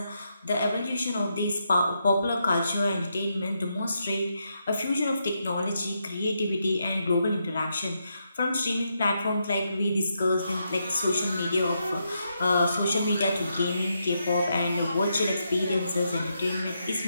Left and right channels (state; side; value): inverted; both; correlation -0.82